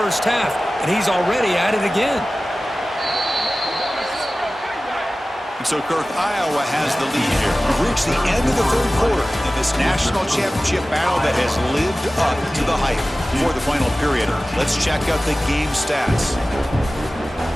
half, and he's already at it again. And so, Kirk, Iowa has the lead here. We've reached the end of the third quarter in this national championship battle that has lived up to the hype. For the final period, let's check out the game stats.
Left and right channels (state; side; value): normal; both; correlation 0.96